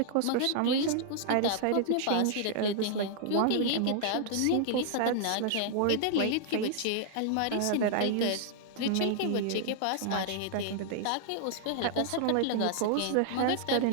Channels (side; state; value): both; different; correlation -0.01